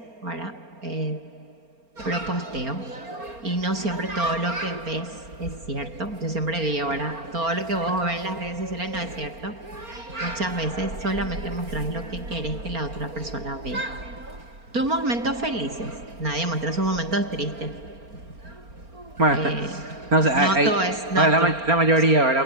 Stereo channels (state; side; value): late; left; 4.3 ms